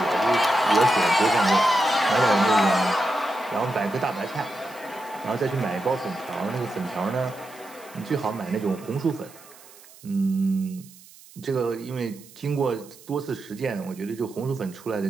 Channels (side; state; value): right; noise; hiss, 22 dB below the sound